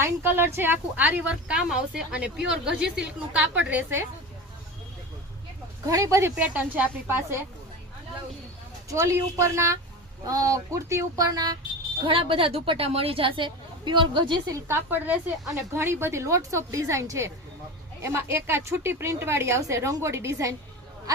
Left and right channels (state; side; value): normal; both; correlation 0.27